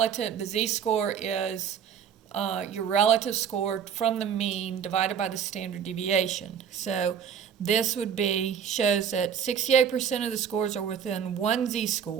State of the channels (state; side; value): quieter; left; 7.8 dB